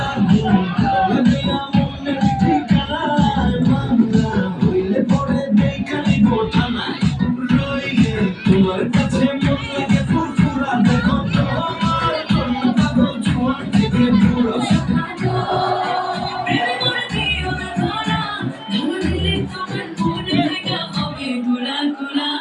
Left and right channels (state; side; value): identical; both; correlation 1.00